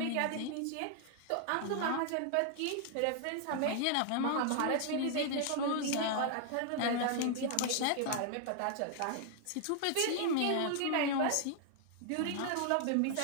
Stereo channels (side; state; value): both; different; correlation 0.00